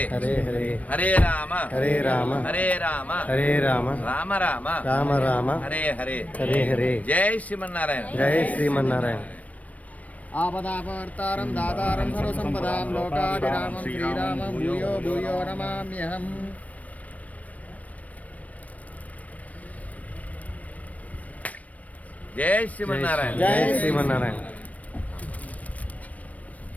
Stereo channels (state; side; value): late; right; 0.069 ms